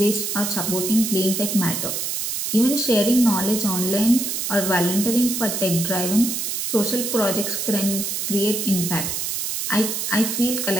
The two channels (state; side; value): noise; right; hiss, 2 dB below the sound